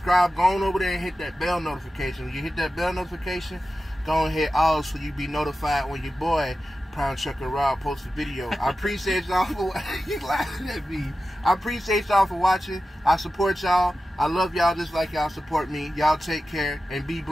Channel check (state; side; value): normal; both; correlation 0.93